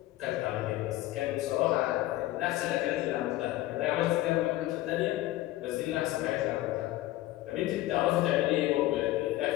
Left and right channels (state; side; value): quieter; right; 16.2 dB